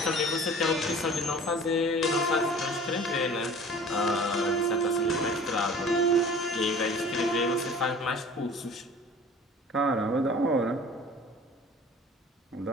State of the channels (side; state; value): both; normal; correlation 0.45